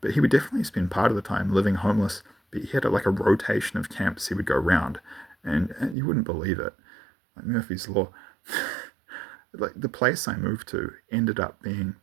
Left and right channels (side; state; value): left; drops out; at 6.0 s